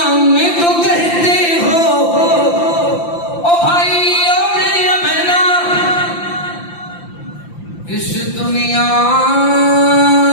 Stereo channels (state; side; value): late; right; 5.8 ms